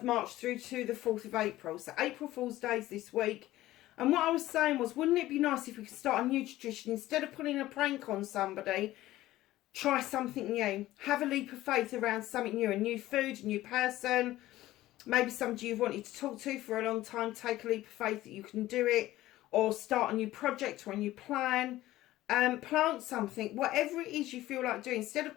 March through to the 4th of April. So April Fool's Day is this week. And what I was saying was, wouldn't it be nice if we could start a new tradition? Instead of putting a prank on somebody, try something new. Have a leap of faith around something new. A new food, a new person. Maybe somebody you've wanted to talk to for a long time. Take a leap of faith that you can do it. Or start a new project or a new plan. Plant something. Whatever it is you feel like doing. Instead of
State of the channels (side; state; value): right; quieter; 15.8 dB